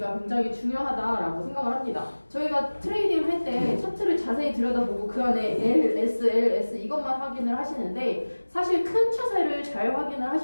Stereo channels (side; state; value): both; inverted; correlation -1.00